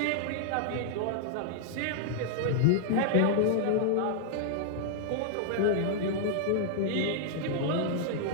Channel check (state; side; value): different; both; correlation -0.01